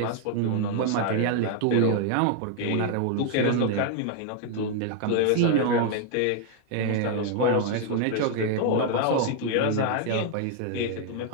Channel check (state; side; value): different; both; correlation 0.00